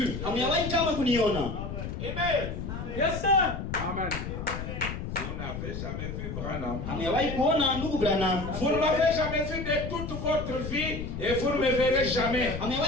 Hamjawahi kama kuniona. Amen. Yes sir. Amen. Vous n'avez jamais vu Branham. Hamjawahi kuona ndugu Branham. Vous ne m'avez jamais vu de toute votre vie et vous ne me verrez jamais.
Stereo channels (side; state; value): left; noise; rumble, 6 dB below the sound